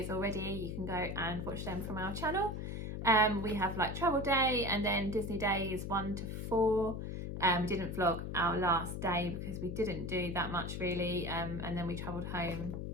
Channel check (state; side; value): noise; left; hum, 5 dB below the sound